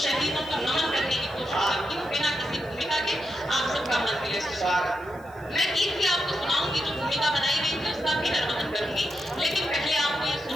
शहीदों को नमन करने की कोशिश करती हूँ बिना किसी भूमिका के। आप सबका मन मिले। मैं गीत भी आपको सुनाऊंगी, जो भूमिका बनाई गई थी उसका भी निर्वहन करूंगी, लेकिन पहले आपको ये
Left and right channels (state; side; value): noise; left; hiss, 28 dB below the sound